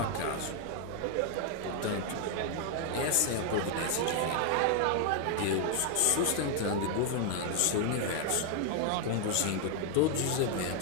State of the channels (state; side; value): different; both; correlation 0.00